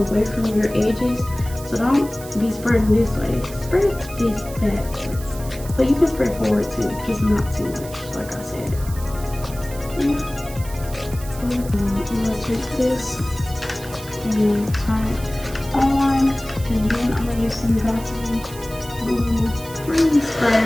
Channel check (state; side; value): noise; right; hiss, 16 dB below the sound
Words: from your edges. So don't be spreading this way. Spread this backwards. But you can spread forward too, just not too much, like I said. Yeah. I'm gonna take this and turn it on, and then I'm gonna use some Gossip Glue Free